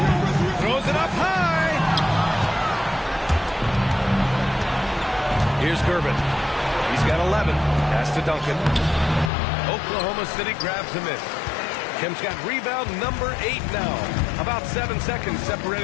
Throws it up high. Here's Gervin. He's got 11. Pass to Duncan. Oklahoma City grabs the miss. Kim's got rebound number 8 now. About 7 seconds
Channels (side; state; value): right; drops out; at 9.3 s